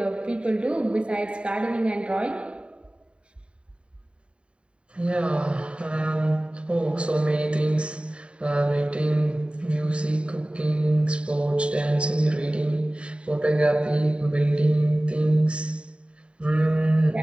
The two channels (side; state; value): left; late; 0.056 ms